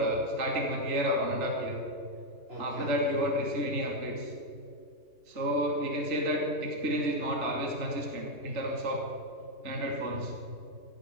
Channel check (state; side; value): late; left; 3.4 ms